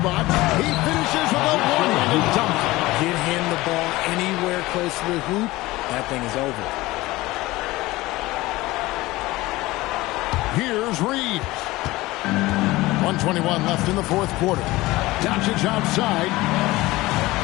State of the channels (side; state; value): right; quieter; 19.3 dB